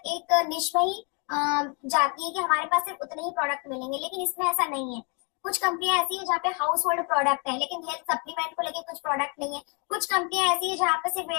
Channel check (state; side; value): quieter; right; 35.2 dB